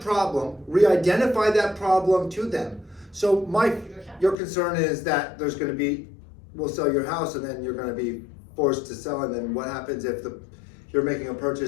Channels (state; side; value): drops out; right; at 4.4 s